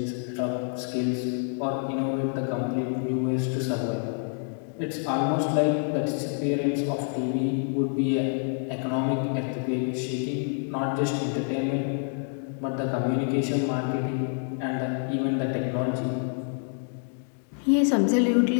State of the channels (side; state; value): right; silent; 55 dB below the other